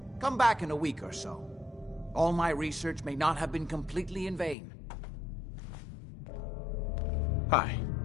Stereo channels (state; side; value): drops out; right; at 4.5 s